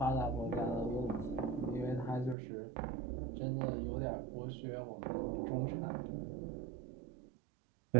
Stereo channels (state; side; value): drops out; left; at 2.4 s